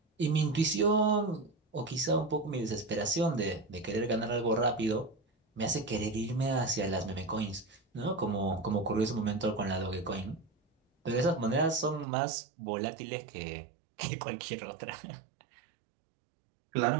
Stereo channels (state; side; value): drops out; left; at 12.1 s